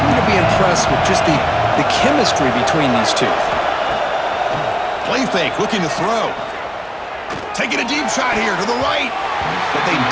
to be impressed with just the chemistry between these two. Play fake, looking to throw. Taking a deep shot here to the right. But they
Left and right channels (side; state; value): both; identical; correlation 1.00